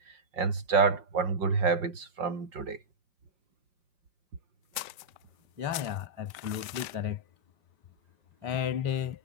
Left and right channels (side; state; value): left; late; 5.1 ms